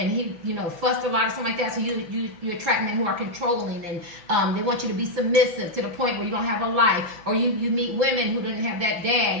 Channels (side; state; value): left; late; 5.9 ms